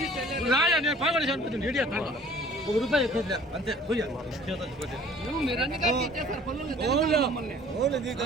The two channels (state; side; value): normal; both; correlation 0.51